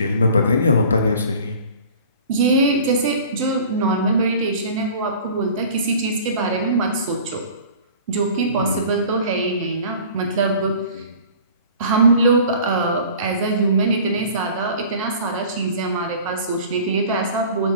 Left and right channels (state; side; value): inverted; both; correlation -0.45